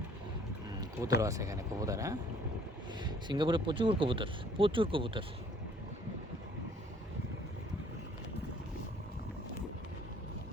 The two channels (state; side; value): normal; both; correlation 0.58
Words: কবুতরও আছে এখানে, কবুতর। হ্যাঁ, সিঙ্গাপুরে প্রচুর কবুতর, প্রচুর কবুতর।